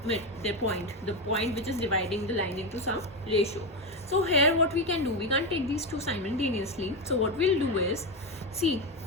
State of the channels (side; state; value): both; normal; correlation 0.12